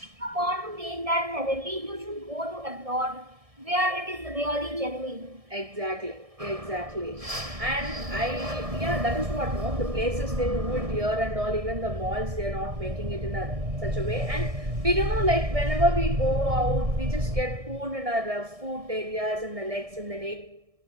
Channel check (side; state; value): left; late; 1.6 ms